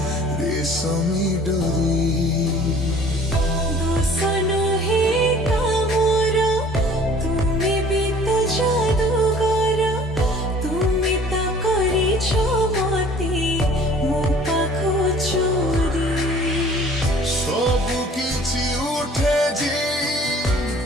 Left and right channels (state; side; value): normal; both; correlation 0.50